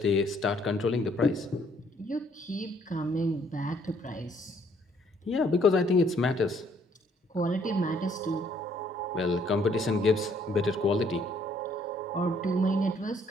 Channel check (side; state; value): both; normal; correlation 0.65